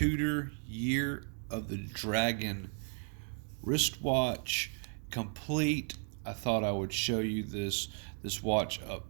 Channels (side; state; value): left; silent; 55 dB below the other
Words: Year of the Dragon wristwatch complete. I thought I would show you this watch